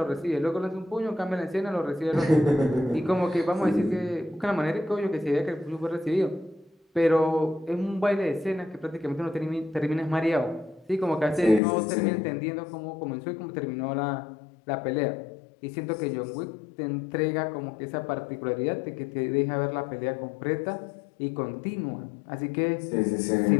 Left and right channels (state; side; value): drops out; right; at 11.6 s